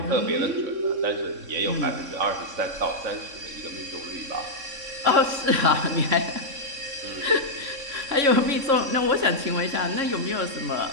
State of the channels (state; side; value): late; left; 3.6 ms